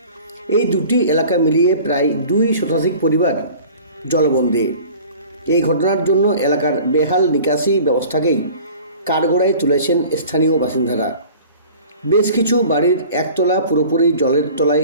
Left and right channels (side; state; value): both; inverted; correlation -0.44